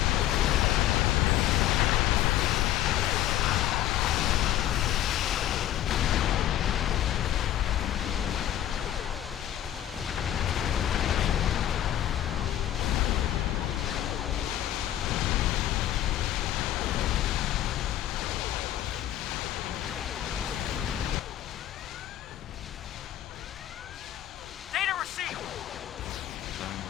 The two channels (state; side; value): quieter; right; 12.2 dB